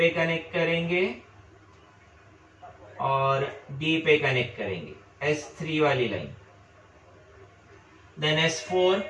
कनेक्ट करेंगे और डी पे कनेक्ट करेंगे, S3 वाली लाइन। देन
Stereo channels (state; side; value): identical; both; correlation 1.00